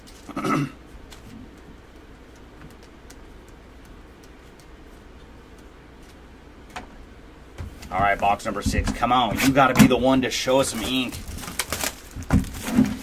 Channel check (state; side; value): identical; both; correlation 1.00